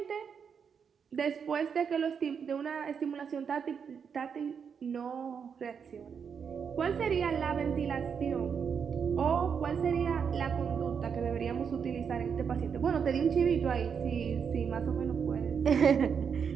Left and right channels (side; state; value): left; quieter; 6.7 dB